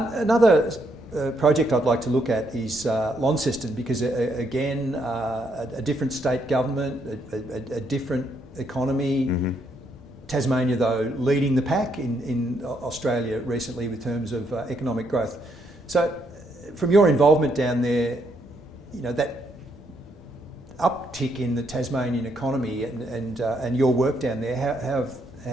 project I'd like to look at is Launceston, because again, a different state government, a different economy. Tasmania, though, leading the pack in Australia recently with terms of economic growth. So, from your involvement down there, that uptick in the Tasmanian economy and your work down there,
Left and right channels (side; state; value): both; normal; correlation 0.74